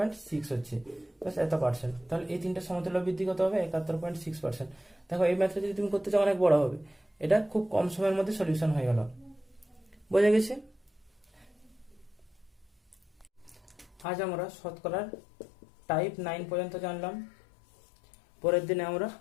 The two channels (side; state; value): right; drops out; at 14.1 s